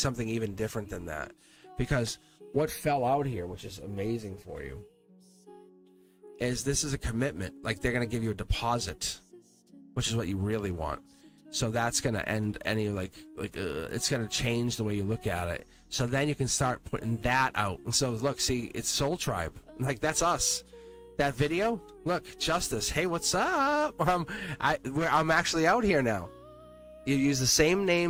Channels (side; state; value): both; identical; correlation 1.00